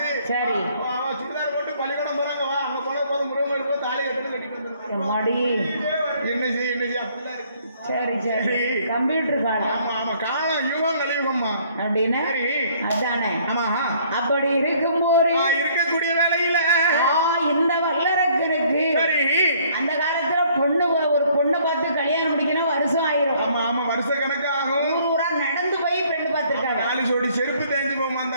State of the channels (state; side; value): inverted; both; correlation -0.61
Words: சரி சுடிதார் போட்டு பள்ளிக்கூடம் போறாங்க வா அங்க போன போது முருகன் போய் தாலி கட்டணும் கட்டிட்டு வந்துருக்காங்க என்ன செய்ய அப்படிலாம் இருக்கு சரி கம்ப்யூட்டர் காலம் ஆமா காலம் யுகம் கலியுகம்மா அப்படின்னு சரி அதானே. ஆமா அப்படி இருக்கும்போது இருக்கக்கூடிய வேலையில இந்த வல்லரக்கனுக்கு சரி அந்த காலத்துல ஒரு பொண்ணு பார்த்து கல்யாணம் முடிக்கணும் வருஷம் ஆயிரும். ஆமா ஆமா வருஷ கணக்கு ஆகும். ஊரா நடந்து போய் பெண்ணு பார்த்திருக்காங்க. 4 ஜோடி செருப்பு தேஞ்சு போமா